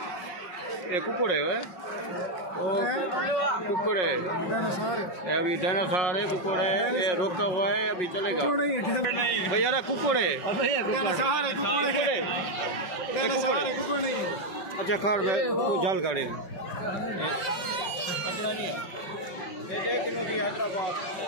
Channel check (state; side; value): late; right; 5.4 ms